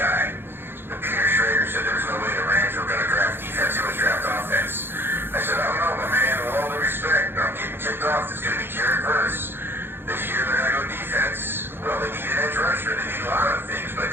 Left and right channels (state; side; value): late; left; 0.10 ms